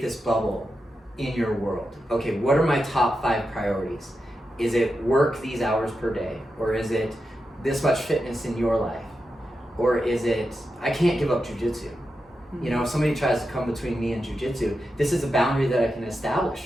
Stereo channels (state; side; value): normal; both; correlation 0.89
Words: this bubble in your world. Okay, what are my top 5 priorities? Is it work these hours per day? Or is it this much fitness in your life? Or is it, I can't give up jujitsu? You know, if somebody tries to come between me and jujitsu, this is a boundary that I can establish